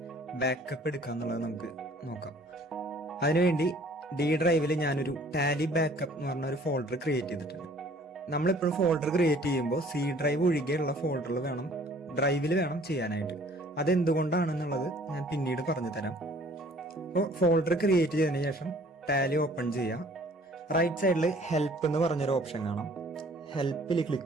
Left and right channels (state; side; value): normal; both; correlation 0.55